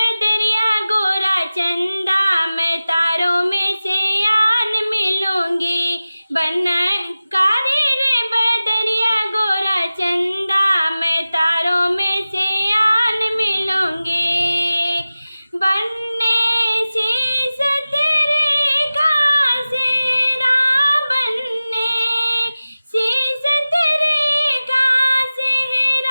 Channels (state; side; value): inverted; both; correlation -0.96